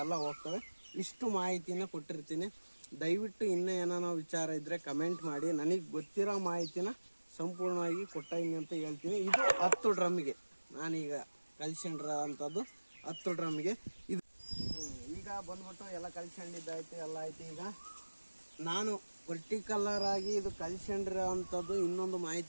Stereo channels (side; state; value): both; inverted; correlation -1.00